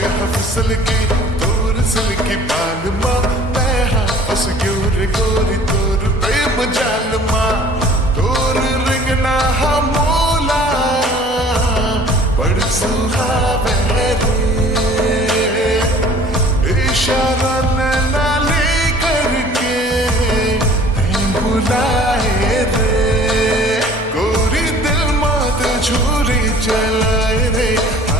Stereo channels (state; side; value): normal; both; correlation 0.50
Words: हाँ फिसलगी तोर सिल्की बाल माँ मैं हाँ फंस गोरी गोरी तोर प्रेम जाल माँ तोर रिंगना हाँ मोला बड़ सुहावे इशारा नैना ले करके बुलाए रे गोरी दिल मात छुरी चलाए रे